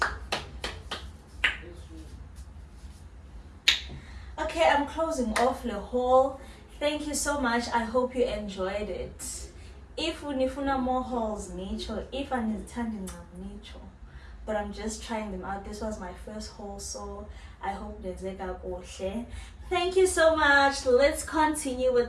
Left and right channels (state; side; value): identical; both; correlation 1.00